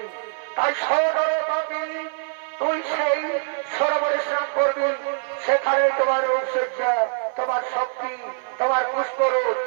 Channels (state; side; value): silent; left; 56 dB below the other